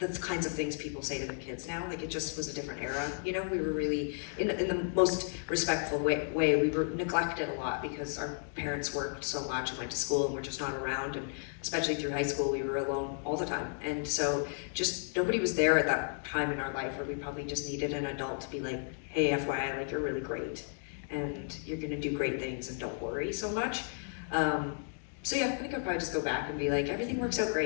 kinds of things people say to their kids now. Like, it just was a different era, you know. We were really, in the most respectful way, we were neglected a lot because our parents worked so much and went to school and were just not around, and especially through high school, we were alone all the time. And so just nobody was there at that time in our life where we probably just needed an adult to be like, hey, FYI, like, you're really great and you're gonna do great things and don't worry so much. So yeah, I think I'll probably just go back and be like, everything works out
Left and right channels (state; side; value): silent; right; 55 dB below the other